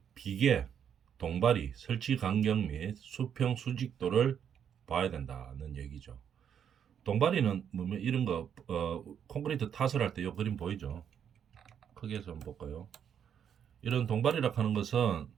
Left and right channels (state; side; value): quieter; left; 8.4 dB